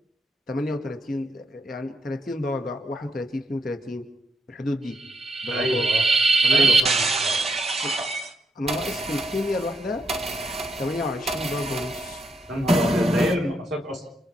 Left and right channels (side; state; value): both; normal; correlation 0.77